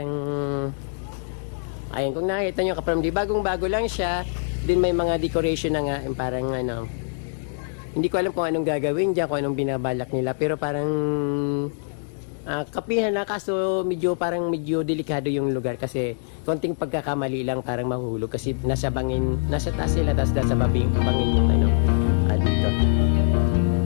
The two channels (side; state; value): right; silent; digital silence